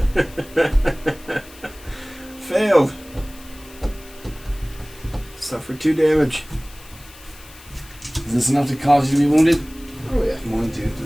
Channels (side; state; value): left; noise; hiss, 21 dB below the sound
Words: Failed. Suffer 2 damage. Is this enough to cause you to be wounded? Oh yeah. 1, 2,